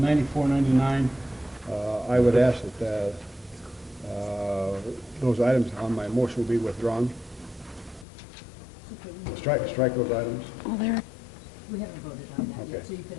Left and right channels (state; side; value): drops out; right; at 8.1 s